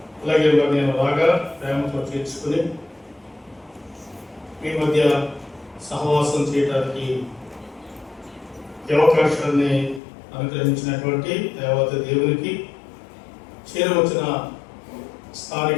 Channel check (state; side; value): drops out; right; at 10.0 s